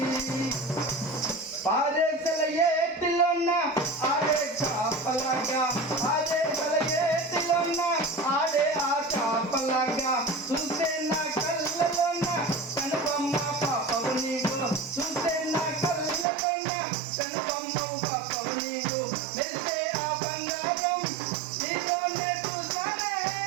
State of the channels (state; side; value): drops out; left; at 16.2 s